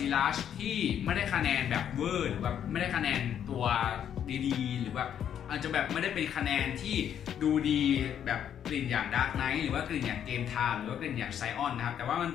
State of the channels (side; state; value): right; quieter; 9.3 dB